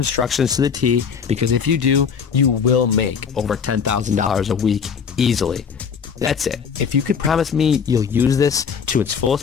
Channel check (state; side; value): quieter; right; 6.5 dB